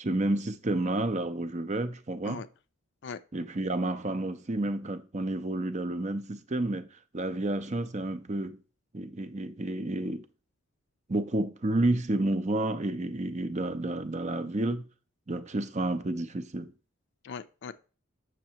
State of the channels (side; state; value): both; normal; correlation 0.71